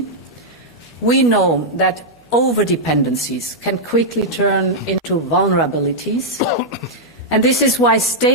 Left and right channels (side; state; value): both; normal; correlation -0.06